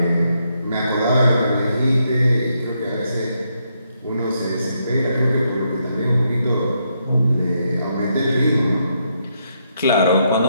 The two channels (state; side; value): inverted; both; correlation -0.78